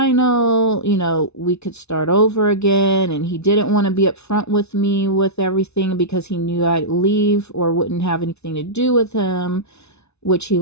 we could start over again. And he didn't want to be upfront with me with everything because he knew I'd leave or wouldn't have anything to do with him, which he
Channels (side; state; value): right; late; 0.81 ms